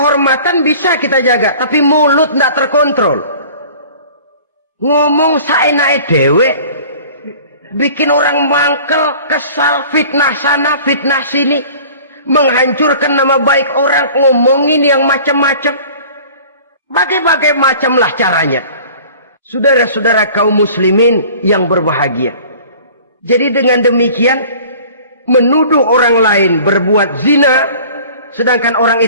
bisa kita jaga, tapi mulut tidak terkontrol. Ngomong saenake dhewe, bikin orang mangkel, kesal, fitnah sana, fitnah sini, menghancurkan nama baik orang, ngomongin yang macam-macam. Bagai-bagai macamlah caranya. Saudara-saudara kaum muslimin yang berbahagia. Jadi dengan demikian, menuduh orang lain berbuat zina, sedangkan orang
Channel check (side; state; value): both; inverted; correlation -0.46